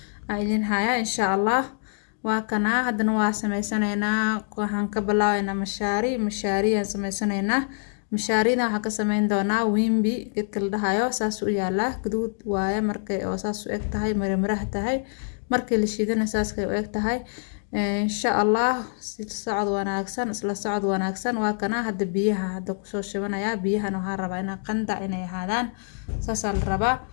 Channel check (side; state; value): right; silent; digital silence